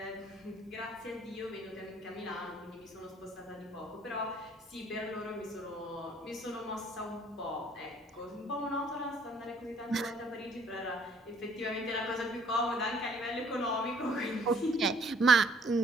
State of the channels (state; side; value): normal; both; correlation 0.61